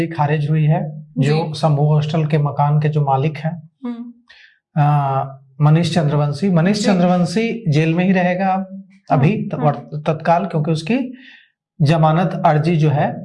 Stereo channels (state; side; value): identical; both; correlation 1.00